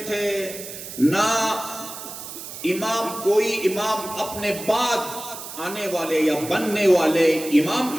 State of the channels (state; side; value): noise; right; hiss, 11 dB below the sound